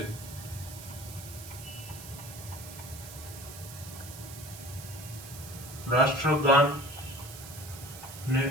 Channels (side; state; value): right; noise; hiss, 13 dB below the sound